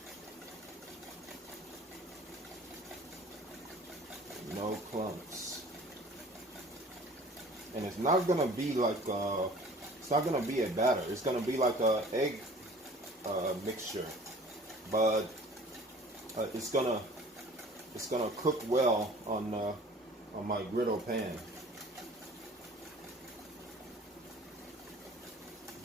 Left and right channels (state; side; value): normal; both; correlation 0.47